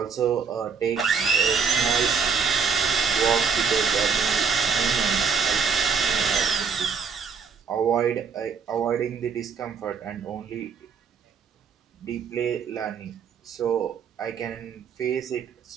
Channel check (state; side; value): quieter; left; 5.9 dB